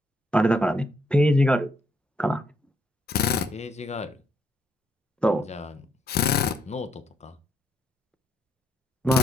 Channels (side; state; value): both; normal; correlation 0.75